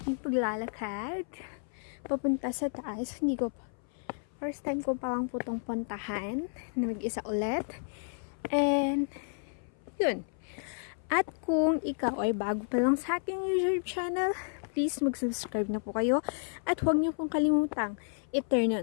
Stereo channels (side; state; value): right; silent; 57 dB below the other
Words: Paglalakad papunta sa taas. Hindi ko first time ko palang putong puntahan na mag-isa ulit, and yun. At kung ikaw ay bago pa lang sa aking YouTube channel, please mag-subscribe na po kayo at huwag niyo pong kalimutang i-turn